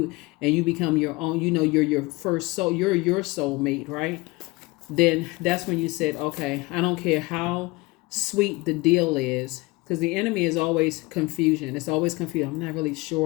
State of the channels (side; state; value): right; quieter; 23.4 dB